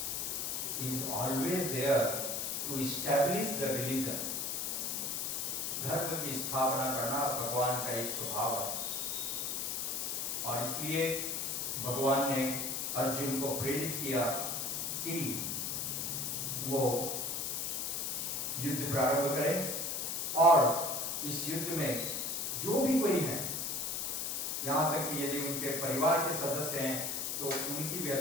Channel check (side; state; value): left; noise; hiss, 1 dB below the sound